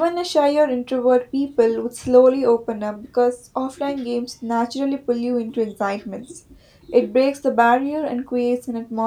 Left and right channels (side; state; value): both; identical; correlation 1.00